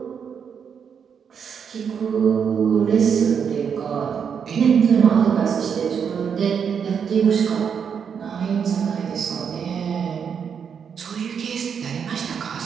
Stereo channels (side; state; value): left; quieter; 7.1 dB